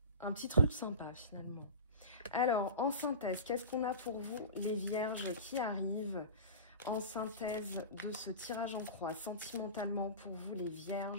petit truc sympa finalement. Alors, en synthèse, qu'est-ce qu'on a pour vous, les vierges qui arrivent? En synthèse de ce tirage en croix, sentimentalement pour vous, les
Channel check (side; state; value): both; inverted; correlation -0.32